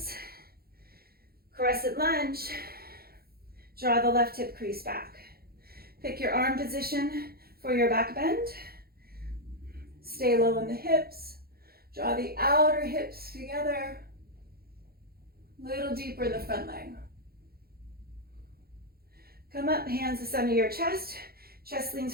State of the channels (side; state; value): left; late; 0.44 ms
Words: Crescent lunge. Draw the left hip crease back. Pick your arm position for your back bend. Stay low in the hips. Draw the outer hips together. A little deeper in the front leg. Come up, hands to center of your chest. Chest leans